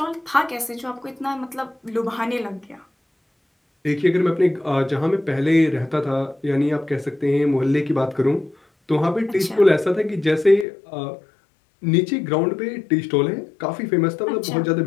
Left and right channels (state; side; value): drops out; right; at 10.7 s